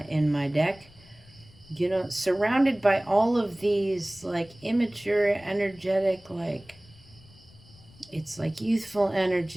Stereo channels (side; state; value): left; noise; rumble, 25 dB below the sound